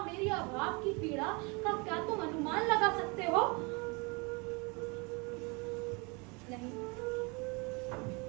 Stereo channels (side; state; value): left; quieter; 29.7 dB